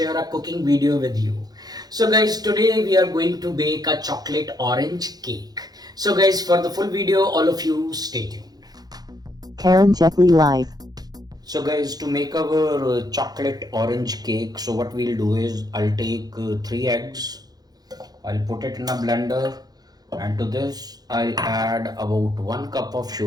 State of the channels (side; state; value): left; late; 0.19 ms